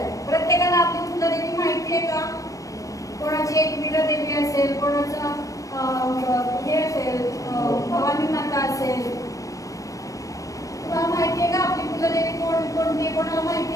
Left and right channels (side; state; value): right; late; 0.16 ms